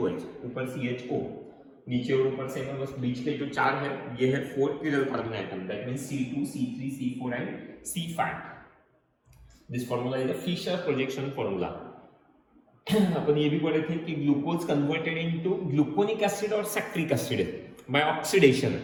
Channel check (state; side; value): identical; both; correlation 1.00